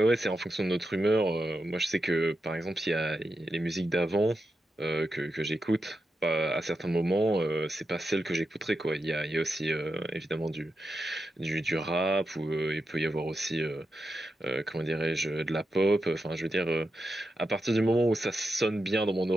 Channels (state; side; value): normal; both; correlation 0.88